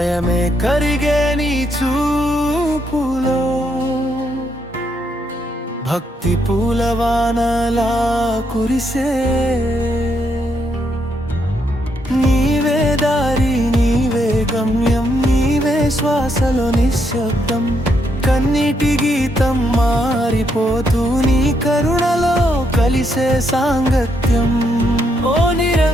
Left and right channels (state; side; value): normal; both; correlation 0.77